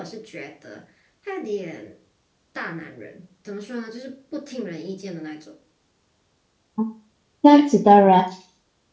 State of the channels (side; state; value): both; identical; correlation 1.00